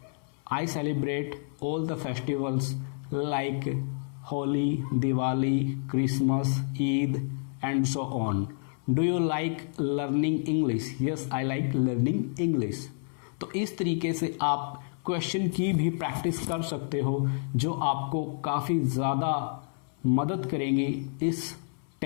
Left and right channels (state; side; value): silent; right; 59 dB below the other